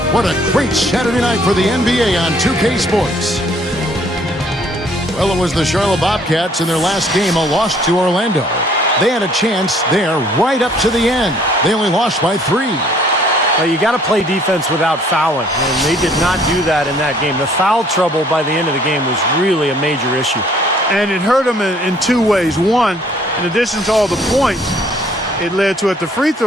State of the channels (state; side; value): normal; both; correlation 0.60